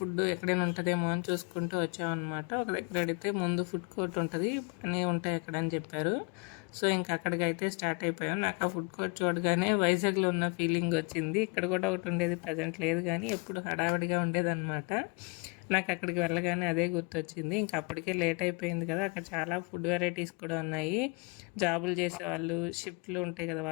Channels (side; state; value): right; quieter; 31.3 dB